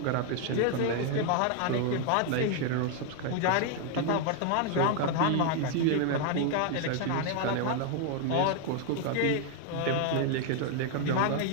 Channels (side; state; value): both; different; correlation 0.00